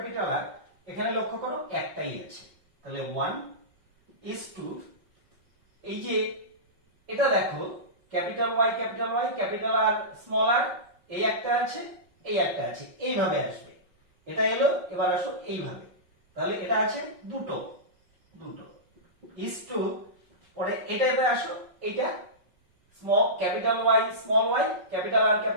R এখানে লক্ষ্য করো একটাই আছে। তাহলে 1:2, এই যে এটা দেখো capital Y capital R small R, এই একটা আছে এই একটা আছে, এইভাবে আসবে। এটা এলো, এবার আসো এইভাবে। তাহলে এটা আছে দুটো ইস টু, পরে এটাতে আসো, এইটা small capital Y small Y capital R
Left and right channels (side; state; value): left; late; 5.4 ms